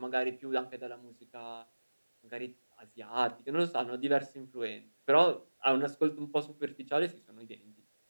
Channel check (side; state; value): both; inverted; correlation -1.00